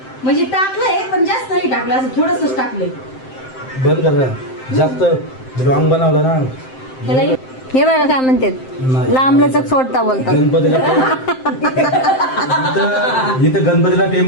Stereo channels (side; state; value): right; late; 7.7 ms